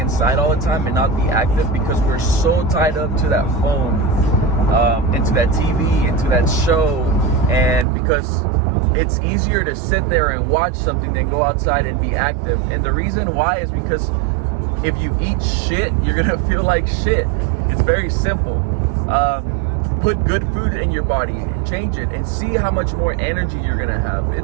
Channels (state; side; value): drops out; left; at 7.9 s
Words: all the time and not be active, because we're so tied up to that phone, into that TV, into that show, and because it's easier to sit there and watch something than go outside and be active. And the reason why is because if you eat shit, you're gonna feel like shit. It's very simple. Put good food in your body, change it, and see how much more energy you're gonna have.